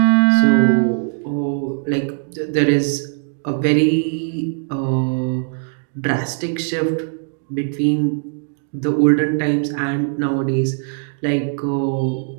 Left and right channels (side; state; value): left; silent; digital silence